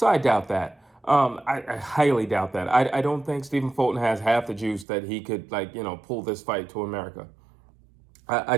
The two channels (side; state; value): left; drops out; at 4.9 s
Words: I doubt that. I highly doubt that. I don't think Stephen Fulton has half the juice that he could, pull this fight to America. I